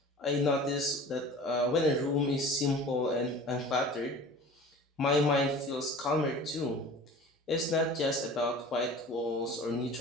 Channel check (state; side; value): normal; both; correlation 0.41